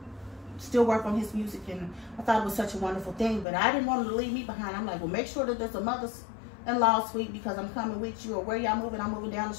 still work on his music. And I thought it was such a wonderful thing, but I didn't want him to leave me behind. I'm like, well, make sure that there's a mother-in-law suite, because I'm coming with you, or where y'all moving, I'm moving down the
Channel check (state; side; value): drops out; right; at 3.5 s